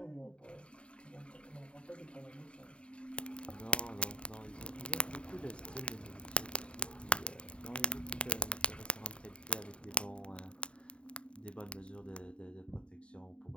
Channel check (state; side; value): late; right; 0.056 ms